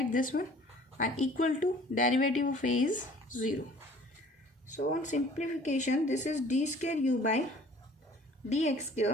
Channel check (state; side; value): normal; both; correlation 0.52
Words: this one, and equal to derivative of a is 0. So on simplification this is d square u by d x